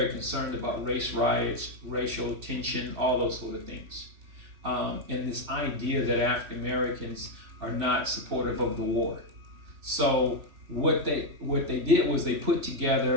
concerned about race riots, racial tension, all those sort of things. And this idea that African Americans are not supportive of the war. So what they did was they put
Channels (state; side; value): late; left; 3.1 ms